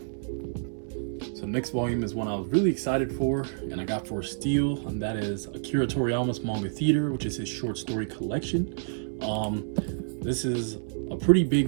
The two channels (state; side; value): silent; left; 59 dB below the other